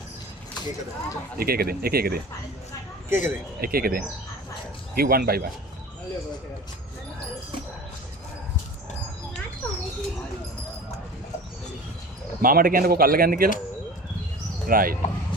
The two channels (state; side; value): normal; both; correlation 0.38